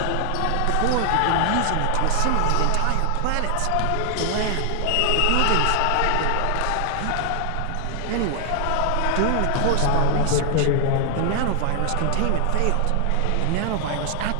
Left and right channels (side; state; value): both; different; correlation 0.00